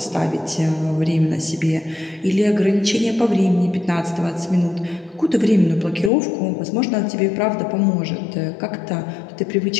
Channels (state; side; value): drops out; right; at 6.1 s